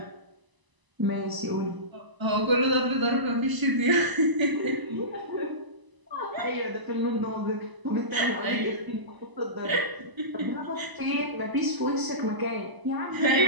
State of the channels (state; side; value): late; left; 1.0 ms